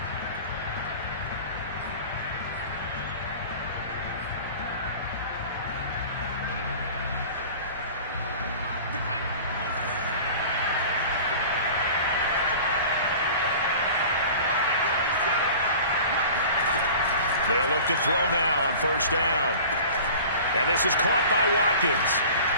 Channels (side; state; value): both; inverted; correlation -0.41